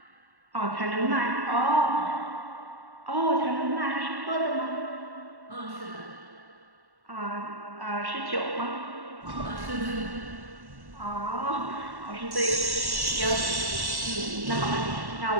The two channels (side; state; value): left; late; 1.1 ms